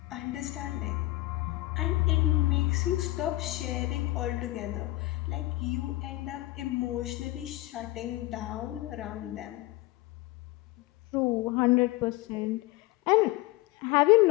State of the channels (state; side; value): quieter; right; 18.7 dB